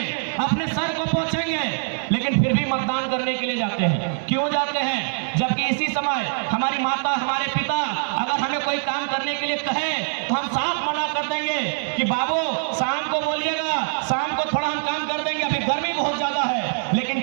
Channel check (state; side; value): silent; left; 63 dB below the other